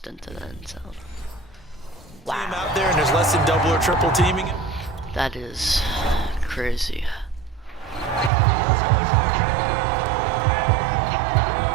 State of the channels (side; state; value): left; drops out; at 8.3 s